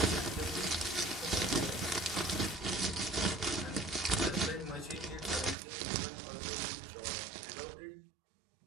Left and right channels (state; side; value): drops out; left; at 5.6 s